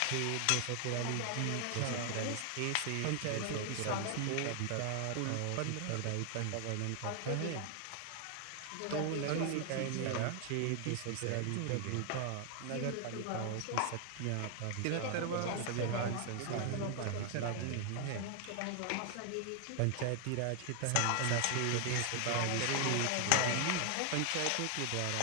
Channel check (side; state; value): both; different; correlation 0.00